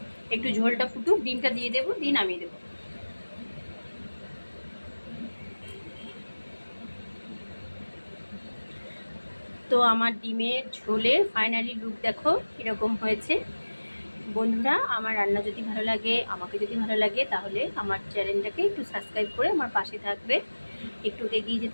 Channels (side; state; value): both; inverted; correlation -1.00